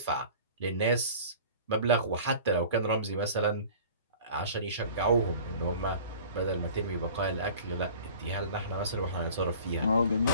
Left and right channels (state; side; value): inverted; both; correlation -0.44